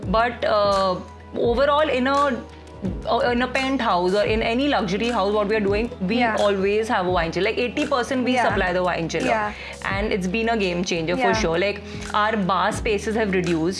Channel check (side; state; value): both; identical; correlation 1.00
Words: But overall, in a penthouse or in any luxury house, what we are doing, we always have a wine chiller. Like 80% we supply the wine chiller, and it's been a game changer for sure. Like our bar spaces have